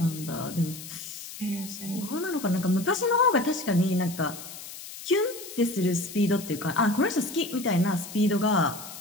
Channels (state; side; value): noise; left; hiss, 12 dB below the sound